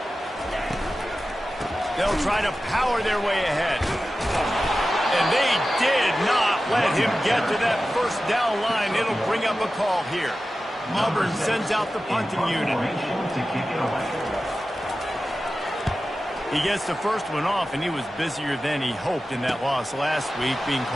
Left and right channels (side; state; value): both; normal; correlation 0.94